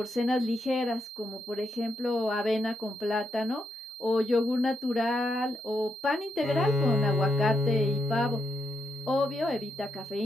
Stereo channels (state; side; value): normal; both; correlation 0.80